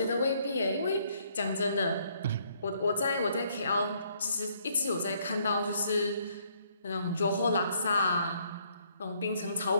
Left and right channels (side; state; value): both; inverted; correlation -0.68